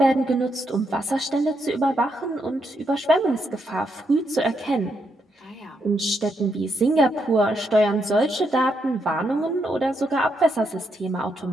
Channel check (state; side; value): normal; both; correlation 0.79